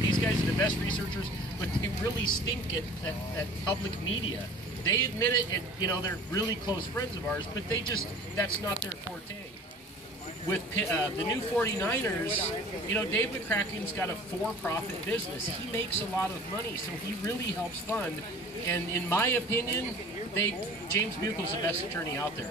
These guys are the best researchers, but they really stink at public media. They admit it, and you know, they're really close friends of ours, but that's not their forte. With the new 49ers, you know, Dave McCracken's got a for-profit business. He makes a lot of money, so he really helps fund. And in my opinion, James Buchel's the best attorney out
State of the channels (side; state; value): both; normal; correlation 0.44